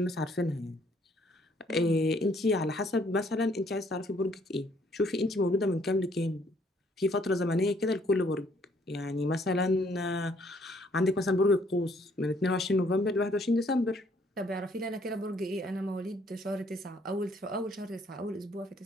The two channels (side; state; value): both; normal; correlation 0.65